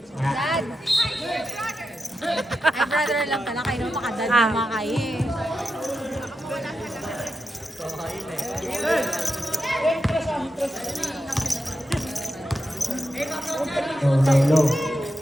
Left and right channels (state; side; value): normal; both; correlation 0.88